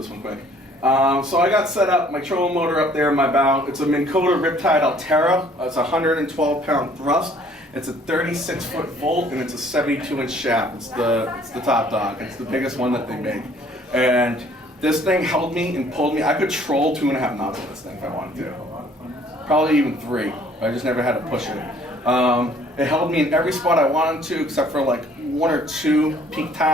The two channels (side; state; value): both; normal; correlation 0.58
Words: one quick. So I got set up, my trolling motor up there in my bow. It's a Minn Kota Riptide Altera. It's a 112-pound thrust. It's a 36-foot volt, and it's a 72-inch shaft. It's the top dog. It's the biggest one that they make. And this thing held me and pulled me. I could troll 2.5 knots with this thing if I wanted to. Probably even 3. I just never had to push it. It held me in every spot I wanted to, except for like 1 or 2 peak